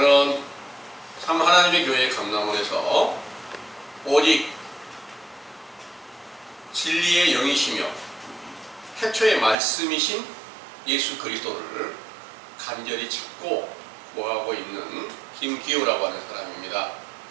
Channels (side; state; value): left; drops out; at 9.6 s